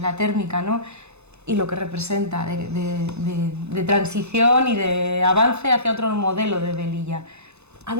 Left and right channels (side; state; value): left; late; 0.81 ms